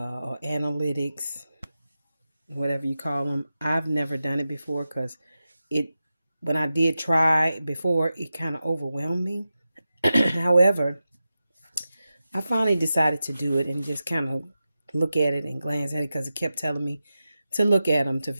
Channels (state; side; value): inverted; both; correlation -0.92